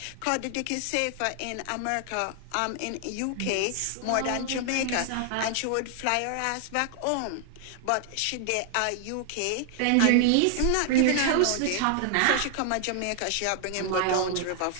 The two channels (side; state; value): both; different; correlation 0.00